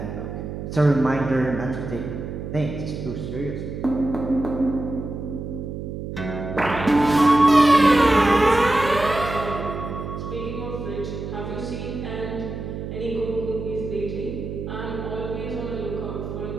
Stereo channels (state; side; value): noise; right; hum, 7 dB below the sound